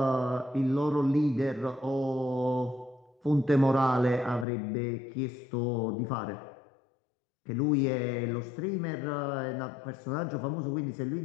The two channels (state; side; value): drops out; right; at 4.5 s